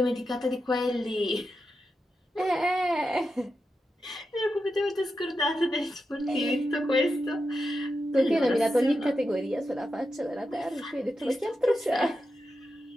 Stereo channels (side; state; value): both; normal; correlation 0.89